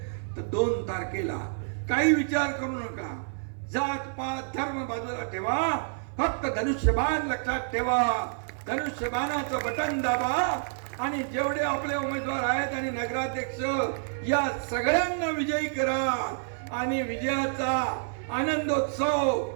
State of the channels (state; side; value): silent; left; 56 dB below the other